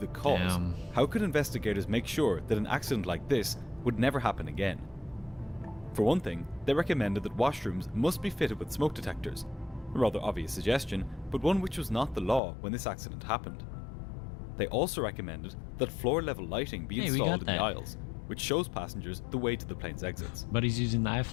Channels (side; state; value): right; drops out; at 12.4 s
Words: cause, how could investigators make sure that an accident like this would never happen again? For one thing, they recommended that washrooms must be fitted with smoke detectors. A rather obvious suggestion, but one which was not the law when this accident happened. They also recommended that floor-level lighting be installed in the aisles, which shows passengers the way to the plane's exits. But he's using the